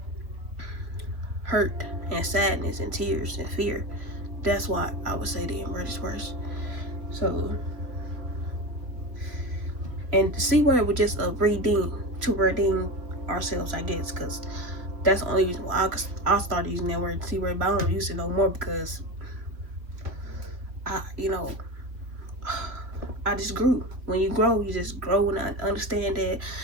hurt and sadness and tears and fear. That's why I would say the N-word is worse. So, and the C word was just a redeem ourselves, I guess, because that's the only reason why I started using that word, C word, but I don't use it I just grew. When you grow, you just grow and understand that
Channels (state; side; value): late; left; 2.8 ms